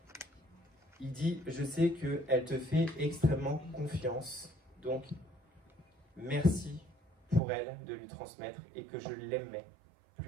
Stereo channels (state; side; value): drops out; left; at 7.4 s